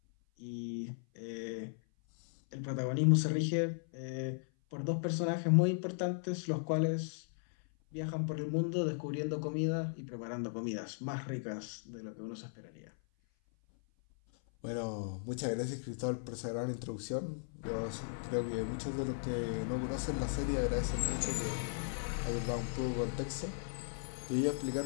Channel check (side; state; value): right; silent; 53 dB below the other